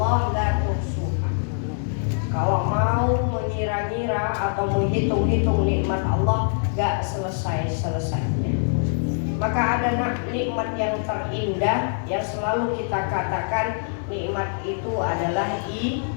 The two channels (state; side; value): silent; right; digital silence